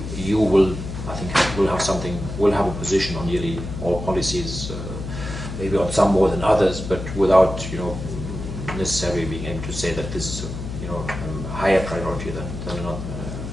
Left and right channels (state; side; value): noise; left; hum, 7 dB below the sound